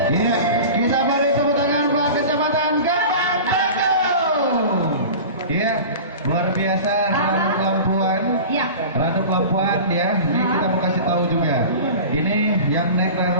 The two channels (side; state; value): both; inverted; correlation -0.35